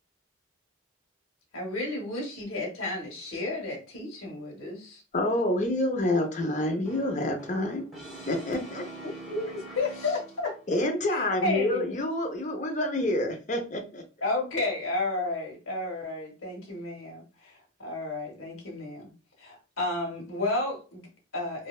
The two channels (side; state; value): both; normal; correlation 0.19